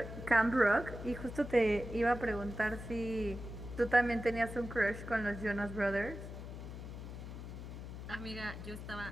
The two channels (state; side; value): noise; left; hum, 9 dB below the sound